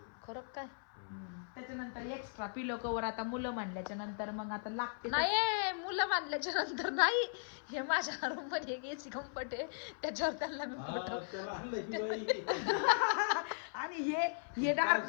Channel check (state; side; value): silent; right; 53 dB below the other